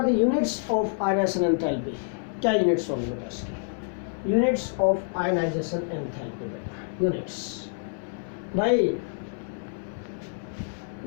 the units of ionization enthalpy? क्या यूनिट्स होंगे बेटा इसके? यूनिट्स ऑफ आयनाइजेशन एंथैल्पी बेटा, यूनिट्स भाई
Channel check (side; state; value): right; silent; digital silence